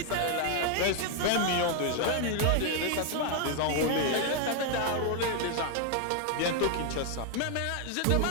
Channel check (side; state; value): both; different; correlation 0.00